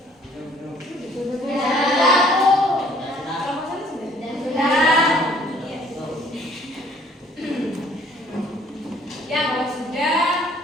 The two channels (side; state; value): both; normal; correlation 0.59